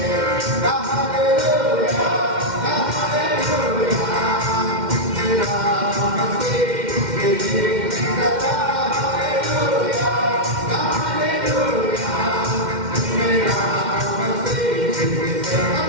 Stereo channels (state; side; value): late; left; 2.1 ms